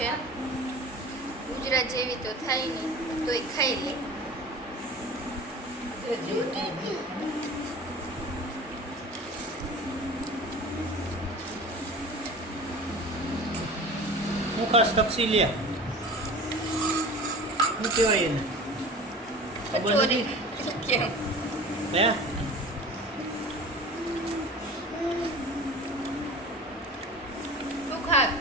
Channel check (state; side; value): normal; both; correlation 0.38